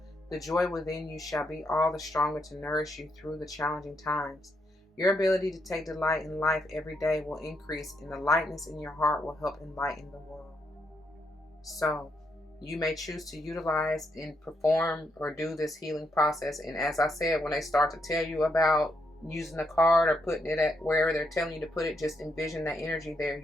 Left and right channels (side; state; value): both; normal; correlation 0.79